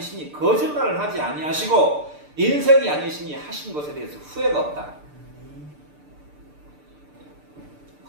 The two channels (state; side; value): late; left; 6.8 ms